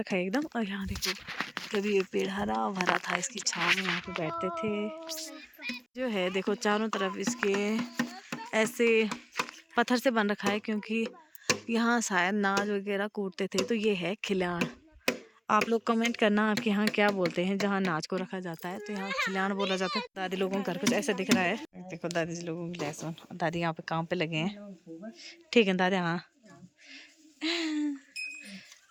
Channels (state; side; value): identical; both; correlation 1.00